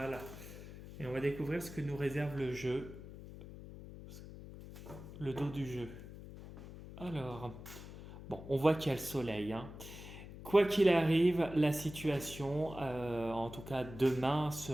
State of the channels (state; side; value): noise; left; hum, 13 dB below the sound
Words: Et on va découvrir ce que nous réserve le jeu. le dos du jeu. Alors, bon, on voit qu'il y a le soleil, hein. Quoi qu'il arrive, la situation, en tout cas demain,